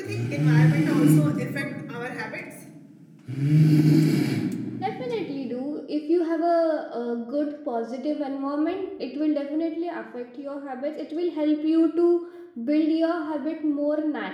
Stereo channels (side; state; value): both; identical; correlation 1.00